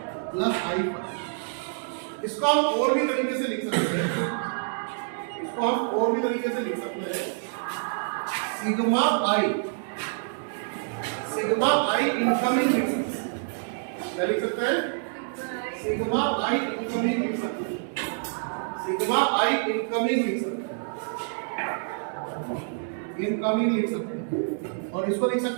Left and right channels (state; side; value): silent; left; digital silence